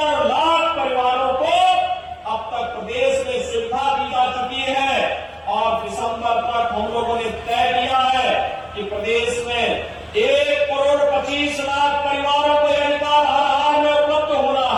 लाख परिवारों को अब तक प्रदेश में सुविधा दी जा चुकी है। और दिसंबर तक हम लोगों ने तय किया है कि प्रदेश में 1,25,00,000 परिवारों को यह अधिकार हर हाल में उपलब्ध होना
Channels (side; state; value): both; identical; correlation 1.00